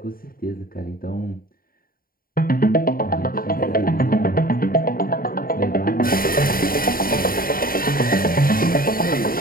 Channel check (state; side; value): late; right; 0.42 ms